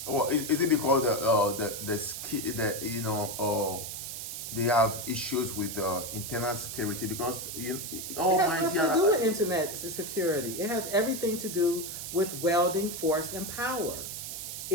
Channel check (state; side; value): noise; right; hiss, 7 dB below the sound